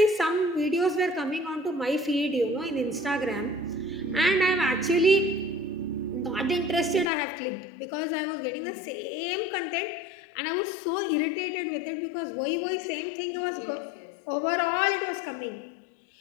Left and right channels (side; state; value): right; drops out; at 7.1 s